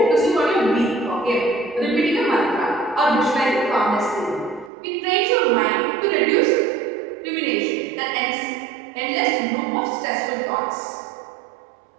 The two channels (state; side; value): drops out; left; at 4.7 s